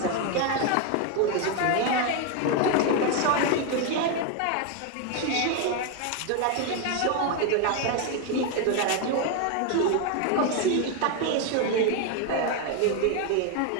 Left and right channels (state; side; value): different; both; correlation 0.01